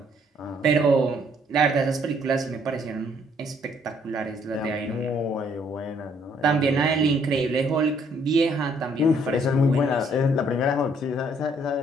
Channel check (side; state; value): both; normal; correlation 0.66